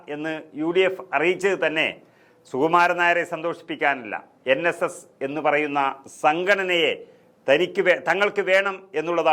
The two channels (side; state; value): both; identical; correlation 1.00